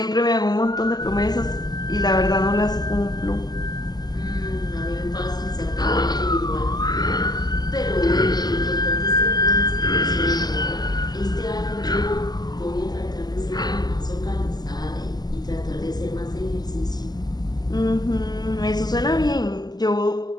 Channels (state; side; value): late; right; 0.20 ms